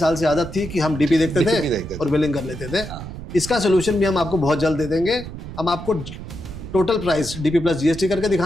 से आदत थी कि हम डीपी देखते थे और बिलिंग कर लेते थे। इसका सोल्यूशन भी हम आपको बहुत जल्द दे देंगे। हम आपको total price DP plus GST करके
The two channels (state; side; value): noise; right; rumble, 11 dB below the sound